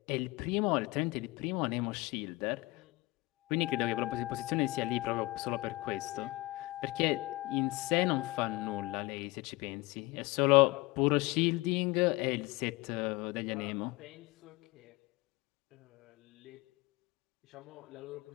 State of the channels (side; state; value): right; quieter; 21.8 dB